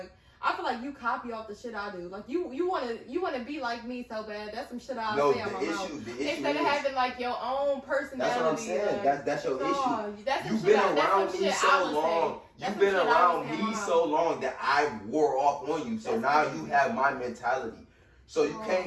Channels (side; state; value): both; identical; correlation 1.00